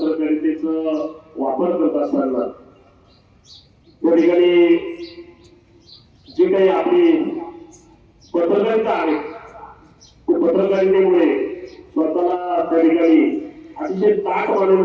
वापर करत असताना त्या ठिकाणी जे काही आपली पत्रकारिता आहे त्या पत्रकारितेमुळे स्वतःला त्या ठिकाणी अतिशय ताट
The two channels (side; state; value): both; identical; correlation 1.00